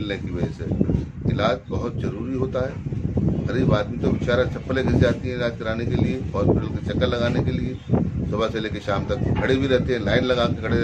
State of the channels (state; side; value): identical; both; correlation 1.00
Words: की वजह से। इलाज बहुत ज़रूरी होता है। गरीब आदमी तो बेचारा चप्पलें घिस जाती हैं इलाज कराने के लिए, हॉस्पिटल के चक्कर लगाने के लिए। सुबह से लेकर शाम तक खड़े भी रहते हैं, लाइन लगा के खड़े